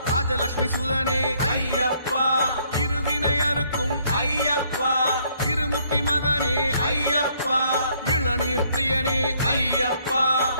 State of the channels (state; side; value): inverted; both; correlation -0.66